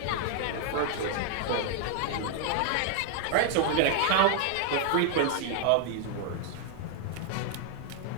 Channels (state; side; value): different; both; correlation 0.00